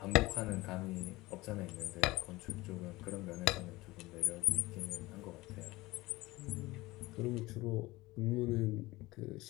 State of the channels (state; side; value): quieter; right; 20.2 dB